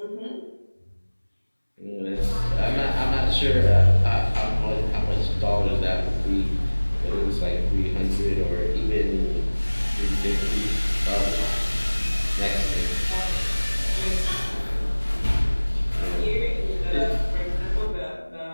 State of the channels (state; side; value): inverted; both; correlation -1.00